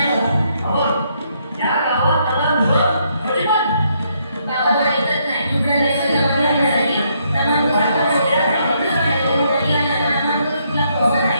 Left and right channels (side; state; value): both; inverted; correlation -0.73